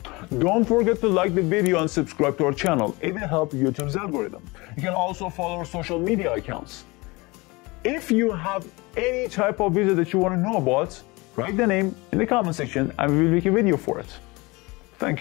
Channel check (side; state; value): right; quieter; 24.2 dB